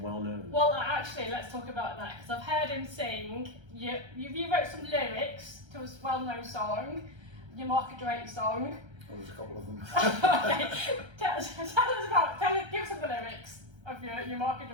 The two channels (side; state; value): left; late; 1.3 ms